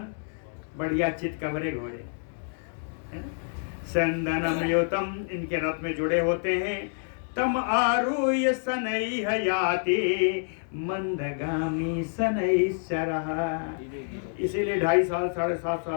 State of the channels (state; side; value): silent; right; digital silence